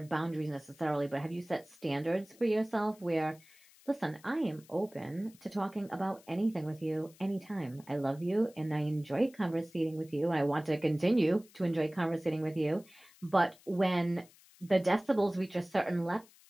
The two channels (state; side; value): noise; left; hiss, 26 dB below the sound